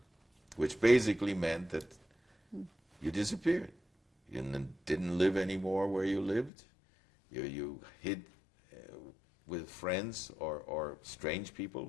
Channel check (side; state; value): right; drops out; at 6.5 s